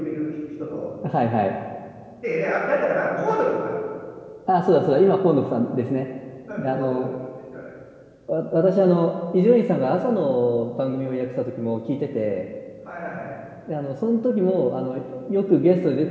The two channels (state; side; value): identical; both; correlation 1.00